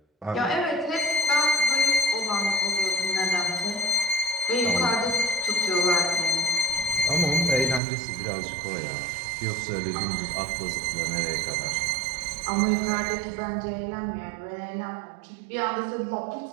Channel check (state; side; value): drops out; left; at 7.8 s